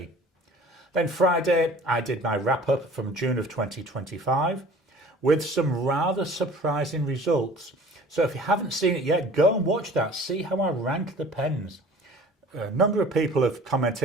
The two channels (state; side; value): normal; both; correlation 0.47